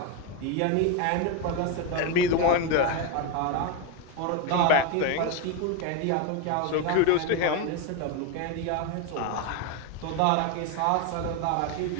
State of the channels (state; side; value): different; both; correlation 0.02